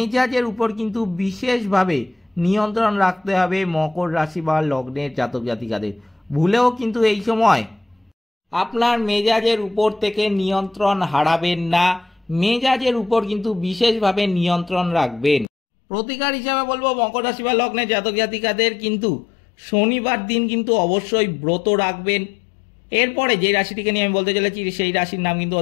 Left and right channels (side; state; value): right; drops out; at 15.5 s